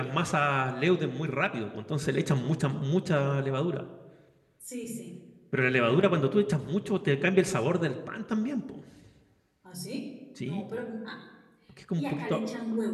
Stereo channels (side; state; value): both; identical; correlation 1.00